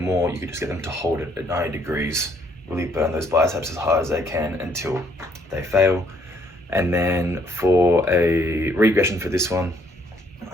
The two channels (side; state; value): both; normal; correlation 0.67